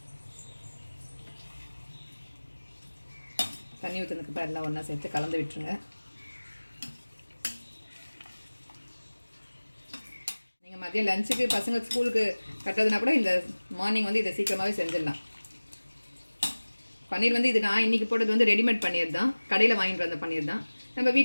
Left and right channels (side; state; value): both; inverted; correlation -1.00